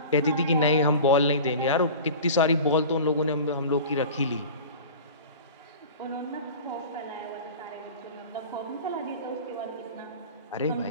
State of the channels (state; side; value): inverted; both; correlation -0.36